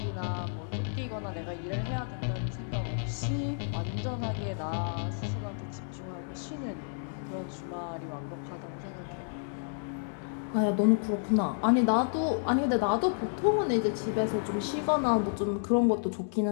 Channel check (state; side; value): silent; right; digital silence